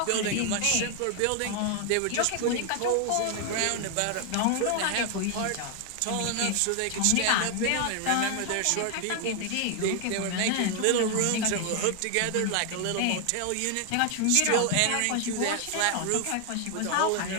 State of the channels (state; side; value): different; both; correlation 0.00